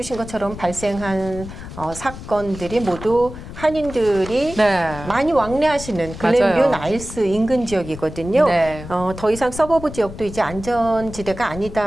것처럼 발생한 사건들이 모두 한인들이 많이 왕래하시는 글렌뷰 나일스 인근 지역이거든요. 더 이상 서버브 지역도 이제 안전지대가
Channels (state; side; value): noise; left; rumble, 12 dB below the sound